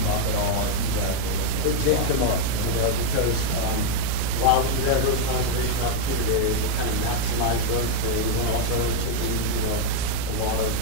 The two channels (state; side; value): different; both; correlation 0.01